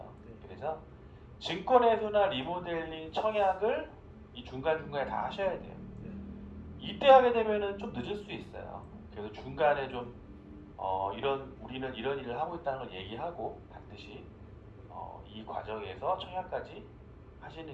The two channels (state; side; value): identical; both; correlation 1.00